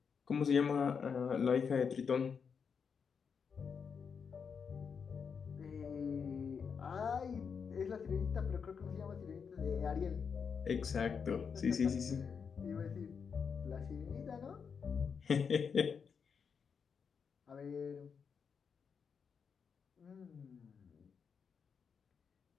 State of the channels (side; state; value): right; quieter; 6.2 dB